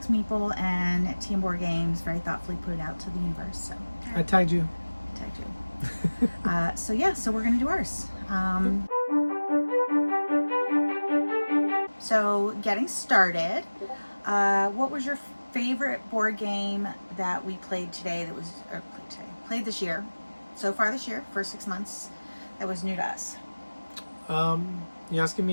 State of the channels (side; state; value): both; inverted; correlation -1.00